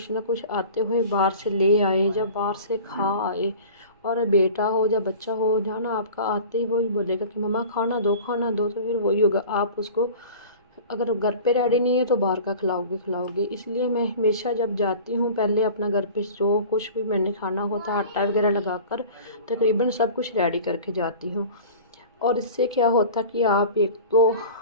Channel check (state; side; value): inverted; both; correlation -0.40